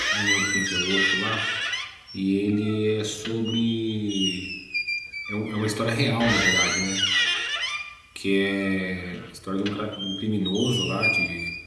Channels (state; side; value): identical; both; correlation 1.00